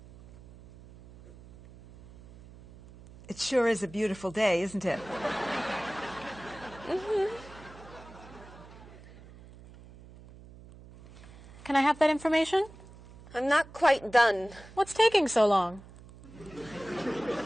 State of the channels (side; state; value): right; noise; hum, 20 dB below the sound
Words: It sure is a beautiful day, isn't it? Can I have that information? I'm not quite done. What's taking so long?